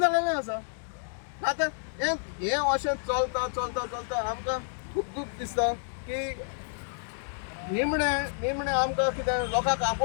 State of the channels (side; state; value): right; silent; digital silence